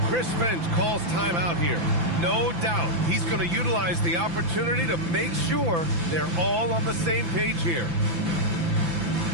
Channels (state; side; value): late; left; 5.9 ms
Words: Chris Finch calls timeout here. No doubt he's going to utilize the opportunity to make sure they're all on the same page here.